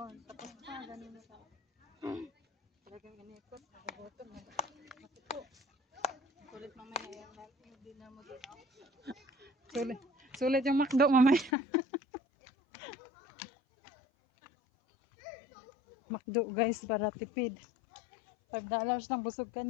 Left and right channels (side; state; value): right; drops out; at 11.5 s